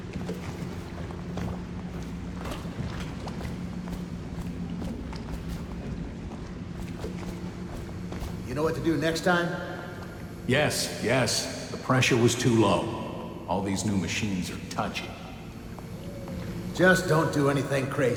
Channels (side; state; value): both; identical; correlation 1.00